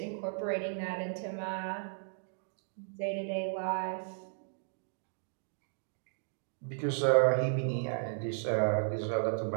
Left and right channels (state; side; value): silent; left; digital silence